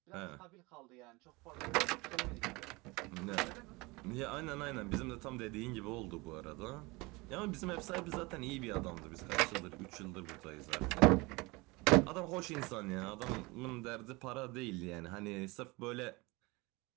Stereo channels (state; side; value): quieter; left; 24.3 dB